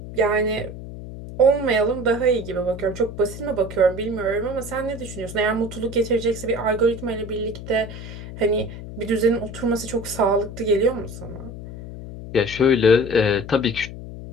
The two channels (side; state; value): left; noise; hum, 11 dB below the sound